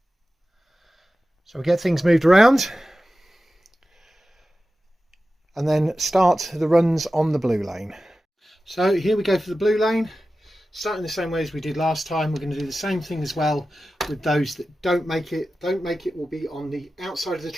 So we get things moved around and then start the runs on the blue lane. So here we go for the blue lane, starting the same way as we did last time. We're going to do the same thing as well with those that don't make it. Don't make it will be on the outside of the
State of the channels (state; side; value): normal; both; correlation 0.94